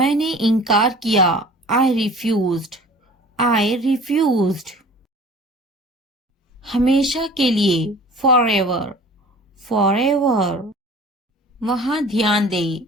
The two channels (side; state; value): both; normal; correlation 0.45